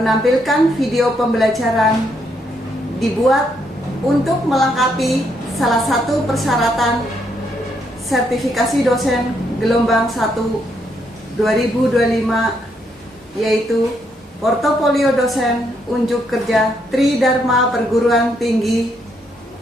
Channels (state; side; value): normal; both; correlation 0.75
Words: video pembelajaran dibuat untuk melengkapi salah satu persyaratan sertifikasi dosen gelombang 1 2025, yaitu portofolio dosen unjuk kerja Tridharma Perguruan Tinggi